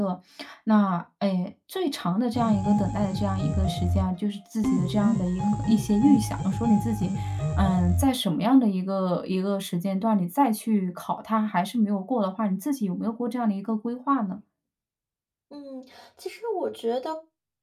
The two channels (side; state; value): both; identical; correlation 1.00